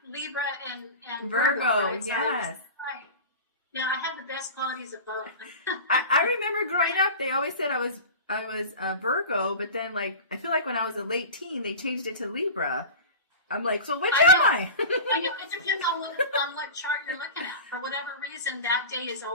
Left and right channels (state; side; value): inverted; both; correlation -0.33